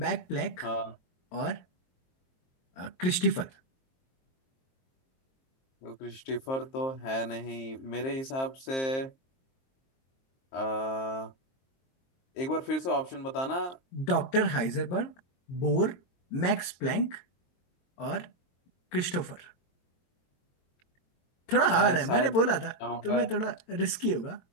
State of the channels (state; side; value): late; right; 22 ms